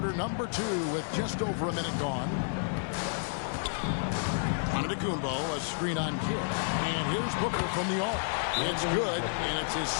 number 2 with just over a minute gone. Antetokounmpo, a screen on Kidd. And here's Booker from the arc. It's good, and it's his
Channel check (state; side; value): silent; right; 57 dB below the other